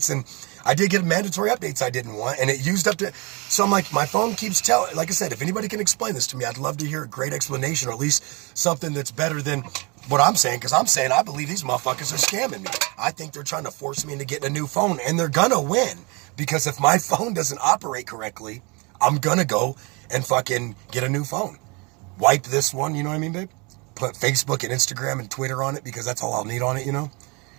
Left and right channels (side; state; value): left; quieter; 29.0 dB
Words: and I did get mandatory updates I didn't want, and it used up to, so I'm like, my phone keeps telling, like I said, if anybody can explain this to me, I'd love to hear a great explanation, or at least something that's better than what I'm saying, because I'm saying I believe these motherfuckers are scamming me. I think they're trying to force me into getting a new phone, and they're gonna win, because if my phone doesn't operate correctly, I'm gonna go and fucking get a new phone. Wipe this one, you know what I mean, babe? Put Facebook and Instagram and Twitter on it, because that's all I'll need on it,